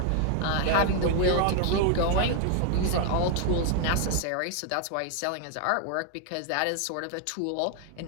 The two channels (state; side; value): different; both; correlation 0.00